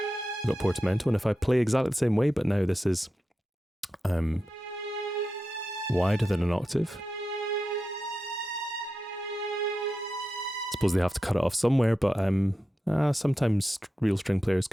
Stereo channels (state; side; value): normal; both; correlation 0.90